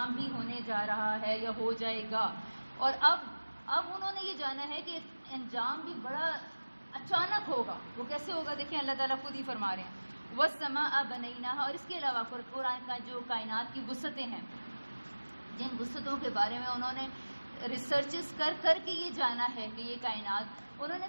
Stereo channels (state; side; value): inverted; both; correlation -1.00